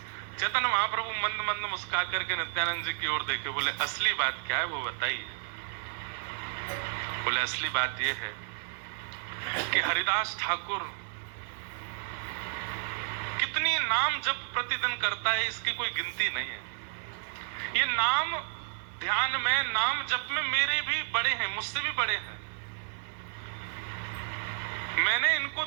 चैतन्य महाप्रभु मंद मंद मुस्कुरा करके नित्यानंद जी की ओर देखे, बोले असली बात क्या है वो बताइए। बोले असली बात ये है कि हरिदास ठाकुर कितनी नाम जप प्रतिदिन करता है इसकी कोई गिनती नहीं है। ये नाम ध्यान में नाम जप में मेरे भी बड़े हैं, मुझसे भी बड़े हैं। मैंने इनको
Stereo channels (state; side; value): silent; left; digital silence